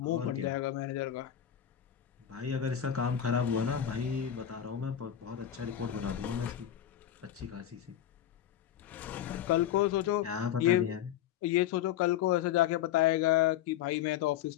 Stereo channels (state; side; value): quieter; right; 10.7 dB